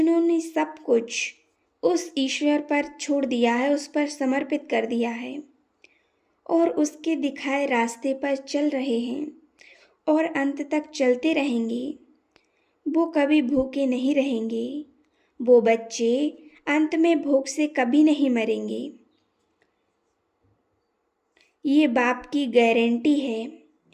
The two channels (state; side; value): identical; both; correlation 1.00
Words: सब कुछ उस ईश्वर पर छोड़ दिया है, उस पर समर्पित कर दिया है और उसके दिखाए रास्ते पर चल रहे हैं और अंत तक चलते रहेंगे, वो कभी भूखे नहीं रहेंगे। वो बच्चे अंत में भूख से कभी नहीं मरेंगे। ये बाप की गारंटी है।